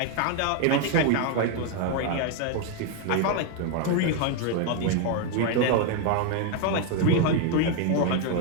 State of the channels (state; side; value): different; both; correlation 0.01